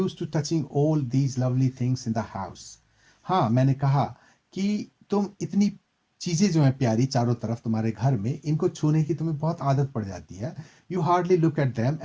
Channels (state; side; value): identical; both; correlation 1.00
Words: to touching all these lovely things in the house. हाँ, मैंने कहा कि तुम इतनी चीजें जो हैं प्यारी चारों तरफ तुम्हारे घर में, इनको छूने की तुम्हें बहुत आदत पड़ जाती है। You hardly look at them